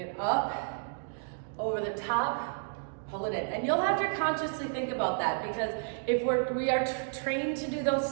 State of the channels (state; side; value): silent; left; digital silence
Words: up, over the top, pull it in. And you'll have to consciously think about that, because if we are trained to do those